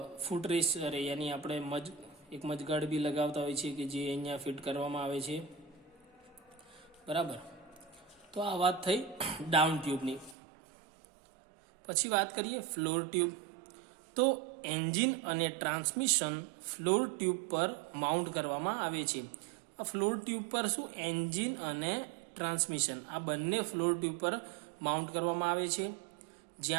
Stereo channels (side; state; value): left; drops out; at 10.4 s